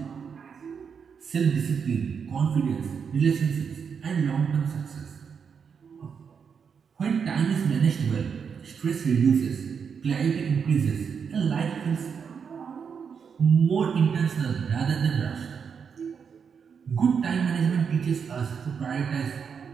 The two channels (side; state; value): left; quieter; 6.5 dB